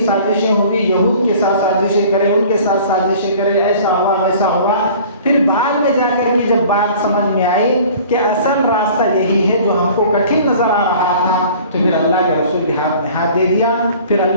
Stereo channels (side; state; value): both; inverted; correlation -0.47